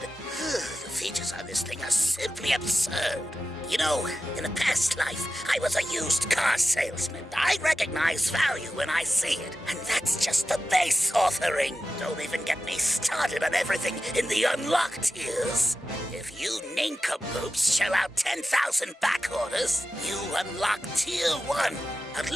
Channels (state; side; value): normal; both; correlation 0.92